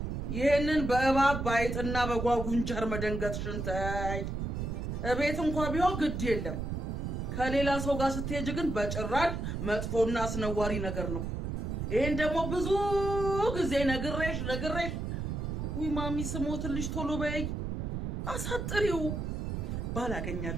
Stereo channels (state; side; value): noise; right; rumble, 3 dB below the sound